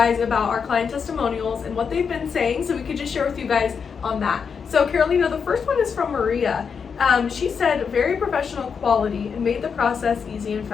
about our client testimonials and what they've been saying, so we could just share with you guys on that. So Carolina, the first one is from Maria. She said, very professional quality and made the process easy and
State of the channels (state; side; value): quieter; right; 6.2 dB